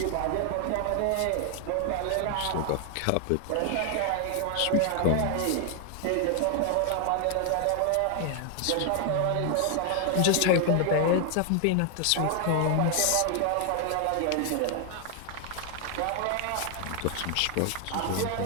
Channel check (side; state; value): both; different; correlation 0.00